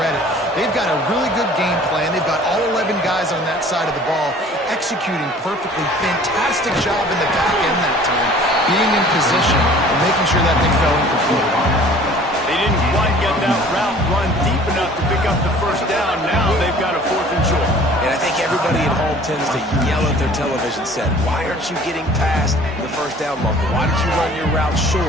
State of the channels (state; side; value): normal; both; correlation 0.49